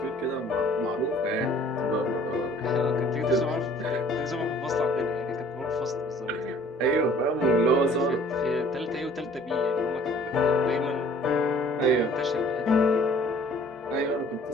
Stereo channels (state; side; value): normal; both; correlation 0.54